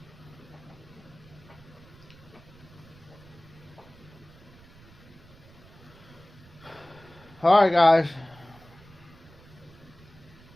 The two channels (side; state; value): right; noise; rumble, 23 dB below the sound